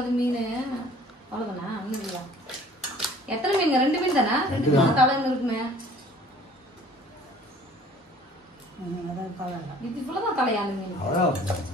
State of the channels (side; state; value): both; normal; correlation 0.52